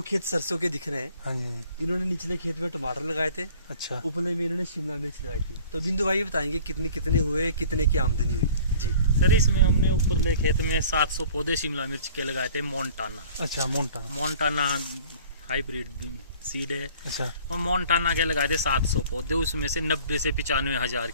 खेत सरसों के दिख रहे हैं। हाँ जी। इन्होंने निचले खेत में टमाटर लगाए थे, अच्छा। उपले में इन्होंने शिमला मिर्च लगाई थी। तो बिंदु भाई बताएंगे कितने कितने हुए, कितने की आमदनी हुई जी। सर इसमें हमने ऊपरले खेत में 700 पौधे शिमला मिर्च के लगाए थे, मोन्टाना। अच्छा, मोन्टाना हाइब्रिड सीड है। अच्छा। और मोन्टाना के लगाए थे 700 पौधे, उसमें से 90 से 95 हजार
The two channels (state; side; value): inverted; both; correlation -0.48